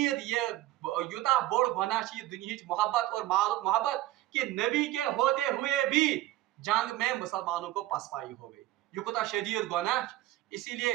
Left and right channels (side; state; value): left; quieter; 15.6 dB